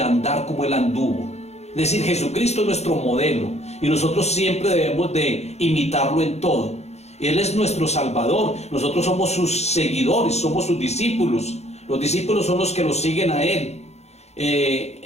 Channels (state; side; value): late; right; 0.31 ms